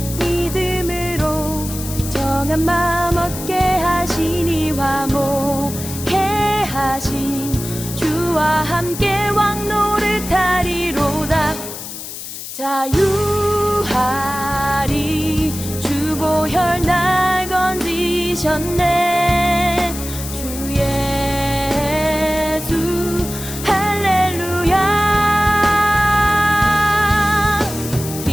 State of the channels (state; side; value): noise; left; hiss, 10 dB below the sound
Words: 믿음으로 정한 마음 얻게 하시니 화목해 하신 주와 함께 왕 노릇하리로다. 자유하리 주 보혈 날 건지셨네. 주 예수 할렐루야.